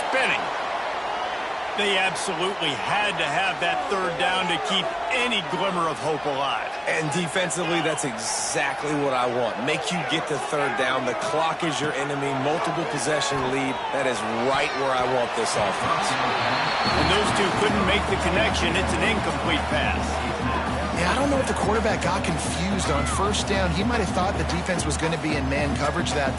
They absolutely had to have that third down to keep any glimmer of hope alive. And defensively, that's exactly what I want. Make you get the third down. The clock is your enemy. Multiple possession lead. That is right where I want this offense. And those two couldn't make the connection. It's an incomplete pass. Yeah, I don't know if the quarterback got confused on first down. He might have thought the defense was going to be in man coverage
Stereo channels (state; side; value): identical; both; correlation 1.00